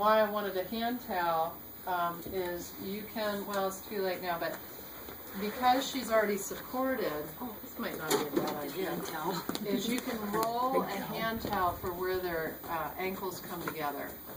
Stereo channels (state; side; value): identical; both; correlation 1.00